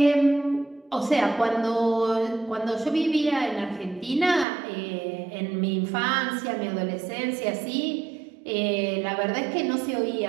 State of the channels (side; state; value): left; drops out; at 4.5 s